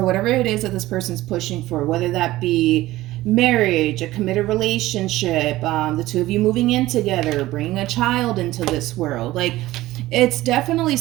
whatever it is that this person's pushing for, whether that be marriage, a committed relationship, the two of you moving in together, bringing a child into this world, like, it's definitely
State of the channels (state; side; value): quieter; left; 16.8 dB